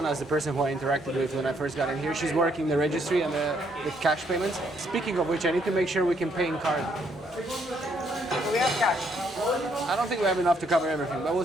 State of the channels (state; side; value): normal; both; correlation 0.71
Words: is the person who I interacted with when I first got in here. She's working the registry and the cash payments. Speaking of which, I need to make sure we can pay in card. We have cash. I don't think we have enough to cover everything, but we'll